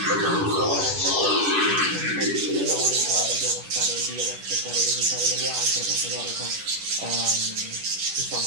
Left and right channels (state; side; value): late; left; 10 ms